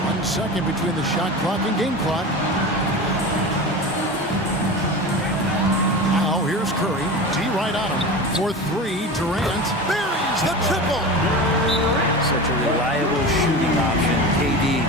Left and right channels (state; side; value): normal; both; correlation 0.29